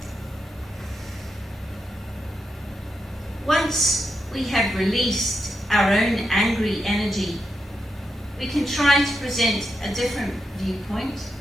Once we have released our own angry energy, we can try to present a different viewpoint,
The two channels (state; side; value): normal; both; correlation 0.85